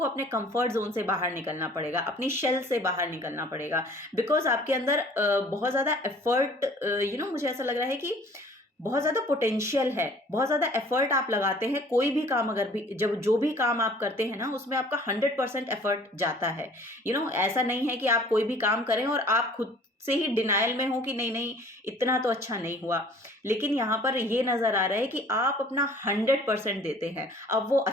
अपने कंफर्ट जोन से बाहर निकलना पड़ेगा, अपनी शेल से बाहर निकलना पड़ेगा, बिकॉज आपके अंदर बहुत ज़्यादा एफर्ट, मुझे ऐसा लग रहा है कि बहुत ज़्यादा पोटेंशियल है, बहुत ज़्यादा एफर्ट आप लगाते हैं। कोई भी काम अगर भी जो भी काम आप करते हैं ना, उसमें आपका 100% एफर्ट जाता है। ऐसा नहीं है कि आप कोई भी काम करें और आप खुद से ही डिनायल में हो कि नहीं नहीं इतना तो अच्छा नहीं हुआ, लेकिन यहाँ पर ये नज़र आ रहा है कि आप अपना 100% देते हैं। अब वो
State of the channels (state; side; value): normal; both; correlation 0.52